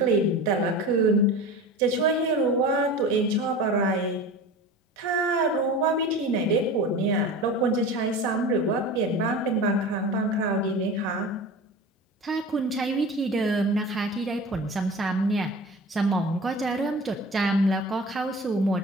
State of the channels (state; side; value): normal; both; correlation 0.34